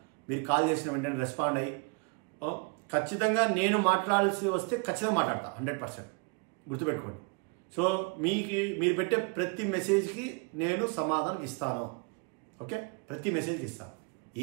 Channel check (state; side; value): quieter; left; 33.4 dB